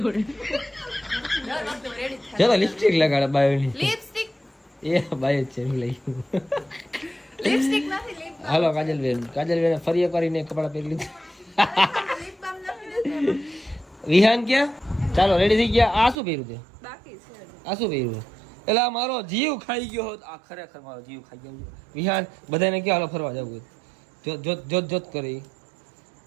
ચાલો લિપસ્ટિક લગાડે બાયોની. લિપસ્ટિક એ બાય જ છે લઈ. લિપસ્ટિક નથી લિપ હાલો કાજલબેન ફરી એક કરીને કપડા પહેરી લીધા. લિપ બામ નથી વિહાન ક્યાં? ચાલો રેડી થઈ ગયા. આ શું પહેર્યું તે? બાકી છે. આ શું પહેર્યું? એટલે આ મારો જીવ ખાઈ ગયો હોત. આ ખરેખર મારો જીવ ખાઈ ગયો. વિહાન બધાને ક્યાં હાલો ફરવા જવું? જોત કરી.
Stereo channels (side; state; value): left; drops out; at 16.2 s